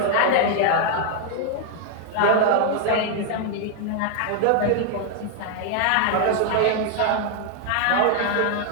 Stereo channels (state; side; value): different; both; correlation 0.00